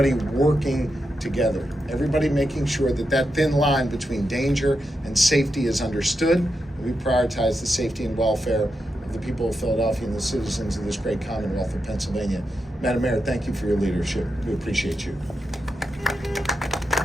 working together. Everybody making sure that that thin line between danger and safety is understood. And we prioritize the safety and welfare of the people of Philadelphia and the citizens of this great Commonwealth of Pennsylvania. Madam Mayor, thank you for your leadership. We appreciate you.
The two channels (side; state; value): both; normal; correlation 0.86